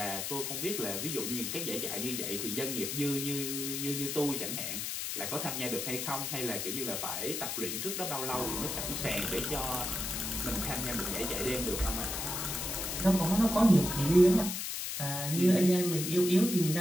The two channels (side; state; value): left; noise; hiss, 3 dB below the sound